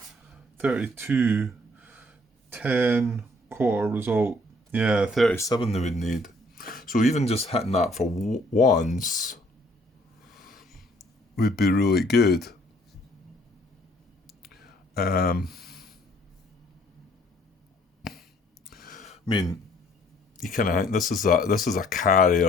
32, 10, quarter result. Yeah, 37 they would need. So even just hitting that for once would be really good. I mean, you kind of think this is a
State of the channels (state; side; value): normal; both; correlation 0.61